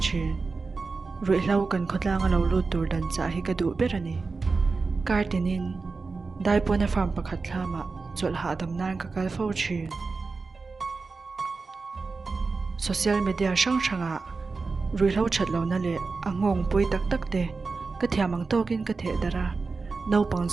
thin rui hlo kan khotlang lo lu tur dan cha hi ka du berani kartinin daipona farm pakhat thlama chol ha dam nan ka kal fo thin social media sang sanga rui hlo that lo na le angong pui tak tak te ka thiamang tokin ka the dara no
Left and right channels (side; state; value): left; quieter; 4.2 dB